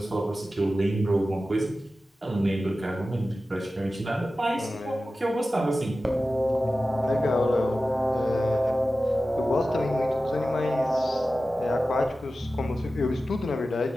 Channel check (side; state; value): both; normal; correlation 0.94